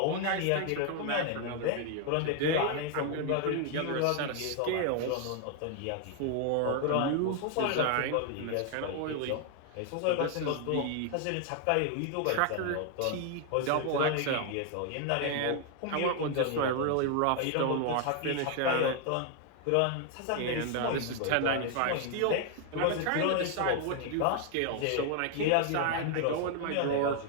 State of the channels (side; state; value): both; different; correlation 0.00